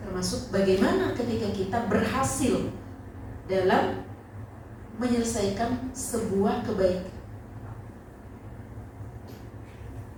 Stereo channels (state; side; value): identical; both; correlation 1.00